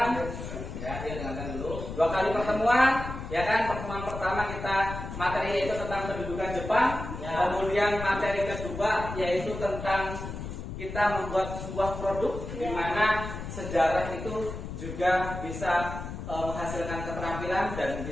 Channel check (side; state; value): left; noise; rumble, 8 dB below the sound